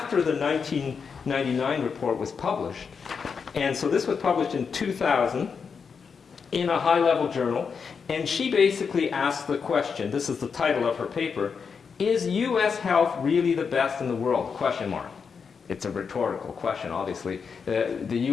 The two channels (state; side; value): quieter; right; 5.9 dB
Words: the 1999 report was published. And so this was published in 2000 in a high-level journal. And she basically asked the question, this is the title of her paper, "Is U.S. health really the best in the world?" Question mark. It's a rhetorical question, obviously. The